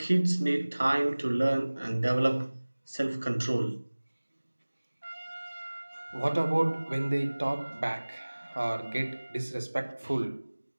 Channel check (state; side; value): inverted; both; correlation -1.00